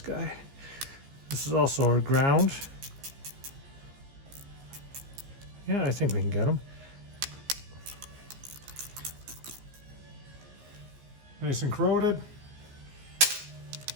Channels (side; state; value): left; late; 15 ms